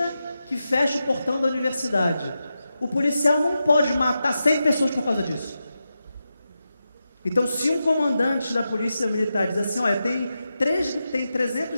que fecha o portão da universidade. O policial não pode matar 100 pessoas por causa disso. Então, se um comandante da polícia militar diz assim: olha, tem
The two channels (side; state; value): both; inverted; correlation -0.90